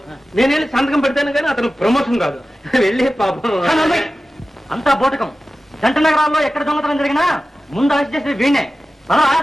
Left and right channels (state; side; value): normal; both; correlation 0.95